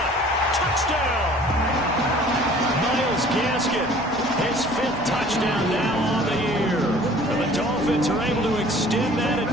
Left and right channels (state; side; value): normal; both; correlation 0.50